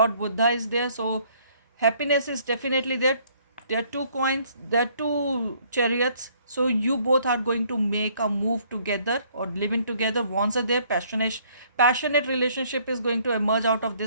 Buddha is there, so happiness is definitely there. There are two coins, there are two chariots, so you both are going to make a move together or living together. Wands are there. Passionate relationship is going to emerge out of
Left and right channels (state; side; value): inverted; both; correlation -0.63